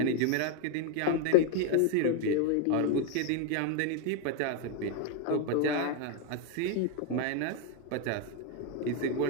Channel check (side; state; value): both; different; correlation 0.01